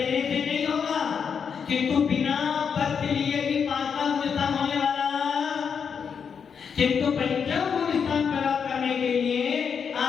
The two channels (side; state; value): right; quieter; 6.7 dB